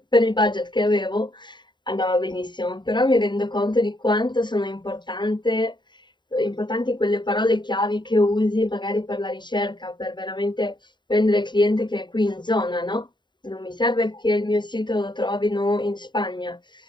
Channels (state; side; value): late; right; 0.22 ms